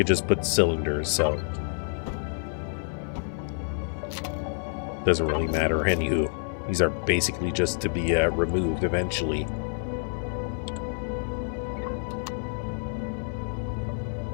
just put cylinders, so. Doesn't really matter, anywho. These are basically just to be removed eventually.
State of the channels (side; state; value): right; silent; digital silence